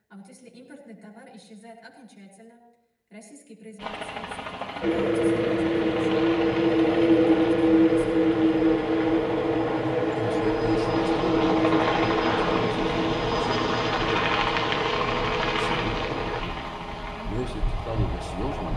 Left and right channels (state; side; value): identical; both; correlation 1.00